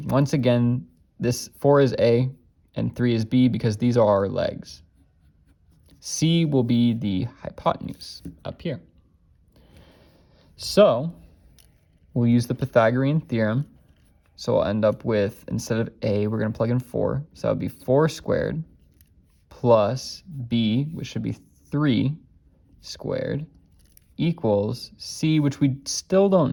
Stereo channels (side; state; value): both; identical; correlation 1.00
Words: Once again, this 4 is a and 3 is b because these are our legs. C will be the hypotenuse up here. So we'll use the Pythagorean theorem. So we'll end up with, instead of a, we're going to plug in 4. So that would be 4 squared plus b, which should be 3 squared, equals c, which we still